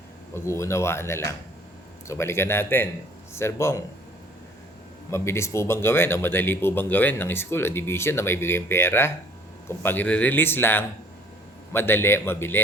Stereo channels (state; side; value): normal; both; correlation 0.55